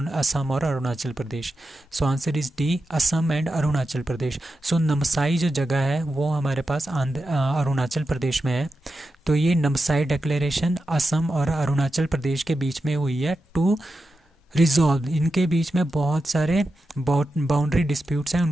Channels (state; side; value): normal; both; correlation 0.90